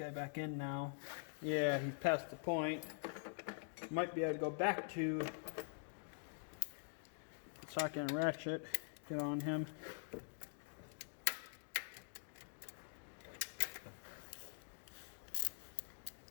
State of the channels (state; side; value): silent; right; digital silence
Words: back in now? Yeah, he's past the point. Might be able to go back to the socket and ratchet, get on him.